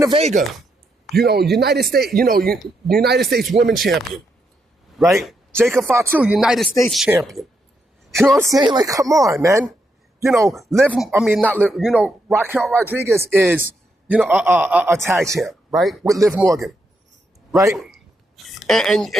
Vega, United States Women Champion, right? Jacob Fatu, United States Champion. You know what I'm saying? Come on, man. Raquel Rodriguez is, a tag champ, right? With Liv Morgan, right?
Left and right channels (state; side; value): normal; both; correlation 0.80